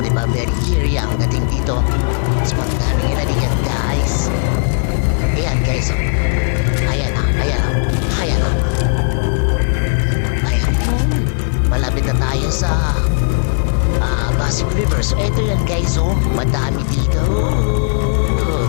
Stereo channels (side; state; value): right; silent; digital silence